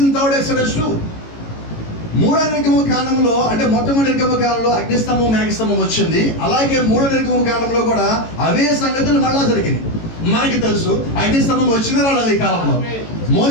in third Exodus too. మూడో నిర్గమ కాలంలో, అంటే మొట్టమొదటి నిర్గమ కాలంలో అగ్నిస్తంభం మేఘస్తంభం వచ్చింది. అలాగే మూడో నిర్గమ కాలంలో కూడా అవే సంగతులు మళ్ళా జరిగింది. మనకి తెలుసు అగ్నిస్తంభం వచ్చిన రాలేదు ఈ కాలంలో.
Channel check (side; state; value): right; late; 18 ms